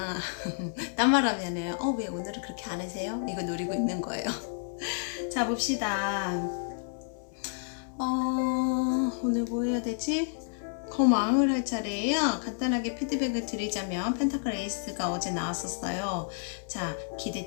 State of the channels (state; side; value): silent; right; 58 dB below the other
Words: 딴 말 하면은 왜 오늘은 그렇게 안 하세요? 이거 노리고 있는 거예요. 자, 봅시다. 오늘 뭐 해야 되지? 거망을 할 차례예요. 간단하게 피드백을 드리자면 펜타클 에이스가 어제 나왔었어요. 자,